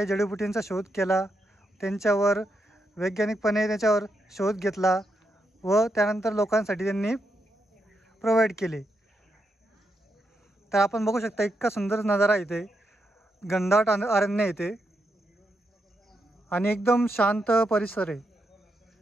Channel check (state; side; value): normal; both; correlation 0.82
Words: जडीबुटींचा शोध केला, त्यांच्यावर वैज्ञानिकपणे त्याच्यावर शोध घेतला व त्यानंतर लोकांसाठी त्यांनी प्रोव्हाइड केले. तर आपण बघू शकता इतका सुंदर नजारा इथे, घनदाट अरण्य इथे आणि एकदम शांत परिसर आहे.